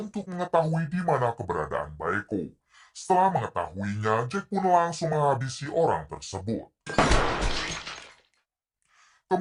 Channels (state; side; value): identical; both; correlation 1.00